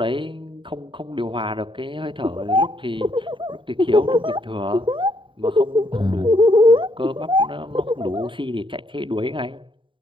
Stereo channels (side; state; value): left; late; 0.24 ms